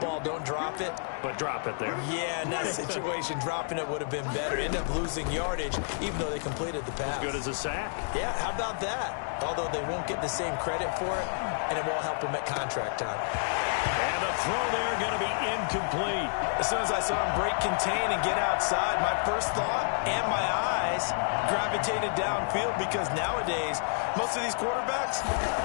don't drop it. But drop it there. Yeah, in that situation, dropping it would have been better. End up losing yardage, even though they completed the pass. As good as a sack. Yeah, how about that? Although they won't get the same credit for it, and it won't help them at contract time. And the throw there going to be incomplete. As soon as I saw him break contain and get outside, my first thought and my eyes gravitated downfield because nowadays, most of these quarterbacks,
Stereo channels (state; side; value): silent; right; digital silence